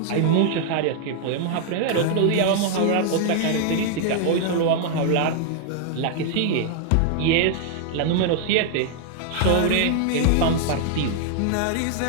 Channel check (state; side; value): different; both; correlation 0.00